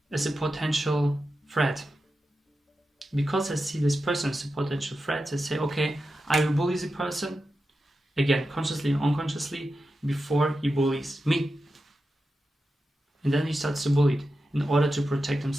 as a potential threat. Because I see this person as a potential threat, they say, okay, I will bully the person, again, consciously and unconsciously, before he bullies me. And then he starts to bully it in order to protect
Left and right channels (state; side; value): normal; both; correlation 0.90